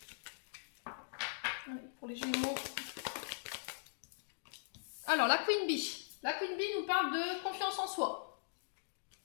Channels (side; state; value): right; silent; digital silence